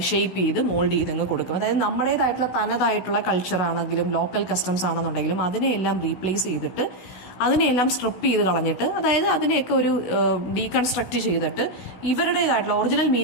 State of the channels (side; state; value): right; late; 16 ms